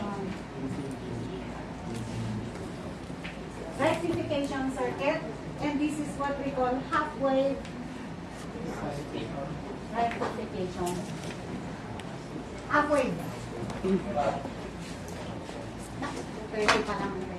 Rectification circuit, and this is what we call half-wave rectification. Half-wave. Pwede pa naman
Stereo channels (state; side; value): identical; both; correlation 1.00